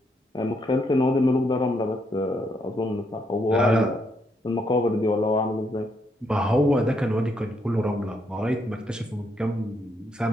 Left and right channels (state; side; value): normal; both; correlation 0.75